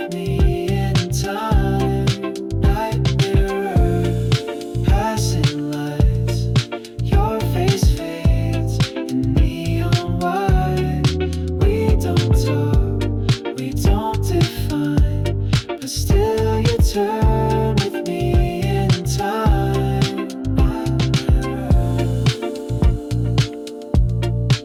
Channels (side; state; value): both; identical; correlation 1.00